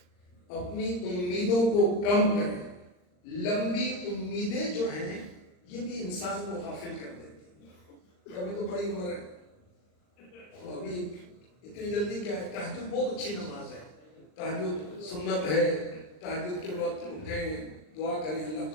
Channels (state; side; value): late; right; 39 ms